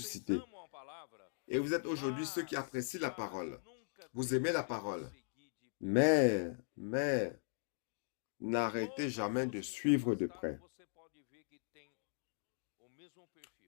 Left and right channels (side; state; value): right; silent; digital silence